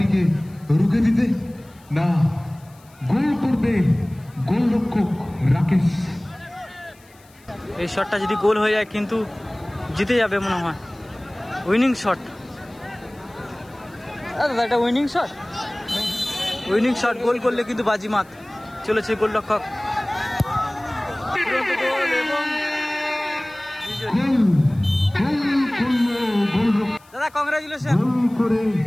রুখে দিতে? না, গোল করবে গোলরক্ষক রাকেশ। এই শটটা যদি গোল হয়ে যায় কিন্তু জিতে যাবে মনে হয়, উইনিং শট। দাদা এটা উইনিং শট, উইনিং শট, গোল করলে কিন্তু বাজিমাত। চলেছে গোলরক্ষক, দাদা কংগ্রাচুলেশন। গোল করে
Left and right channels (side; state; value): left; noise; hiss, 29 dB below the sound